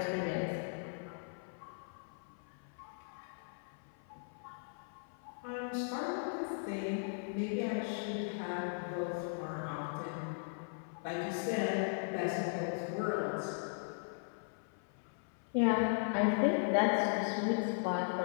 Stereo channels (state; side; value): silent; right; 52 dB below the other